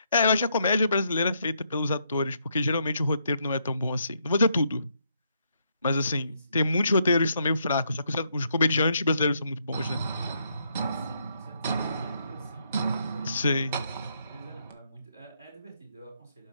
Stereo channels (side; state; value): both; inverted; correlation -0.75